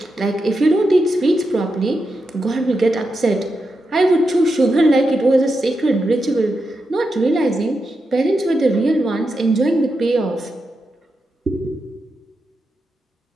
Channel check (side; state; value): both; normal; correlation 0.87